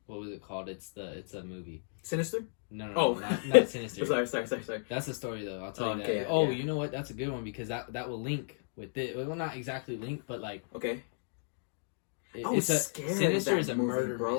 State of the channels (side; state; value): right; silent; digital silence